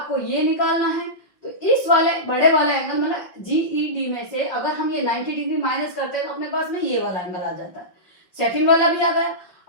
ये निकालना है। तो इस वाले बड़े वाले एंगल मतलब जीईडी में से अगर हम ये 90 डिग्री माइनस करते हैं तो अपने पास में ये वाला एंगल आ जाता है, सेकेंड वाला भी आ गया।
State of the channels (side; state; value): right; late; 5.7 ms